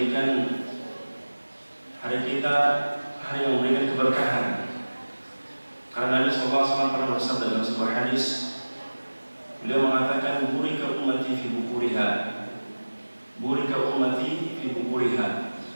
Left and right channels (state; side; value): inverted; both; correlation -1.00